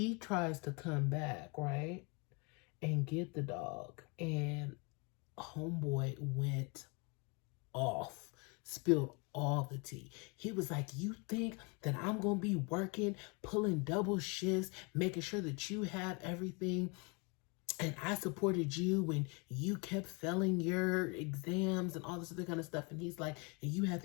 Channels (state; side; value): quieter; right; 31.7 dB